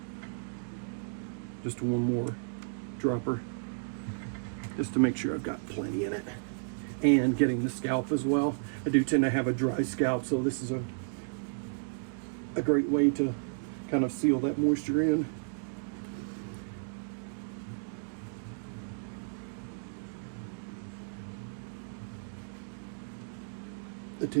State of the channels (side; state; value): left; silent; digital silence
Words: Just one more dropper, just to make sure I've got plenty in it. And getting the scalp as well. I do tend to have a dry scalp, so this is a great way to kind of seal that moisture in. I